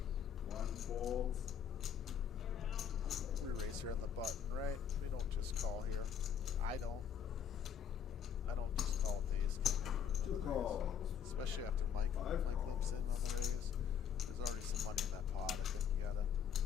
1 folds. We race here on the button, right? We don't just call here. I don't. I don't just call it the ace king after another raise, especially after Mike limps in on the raise. There's already some money in that pot. I think you gotta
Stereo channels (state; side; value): quieter; right; 8.1 dB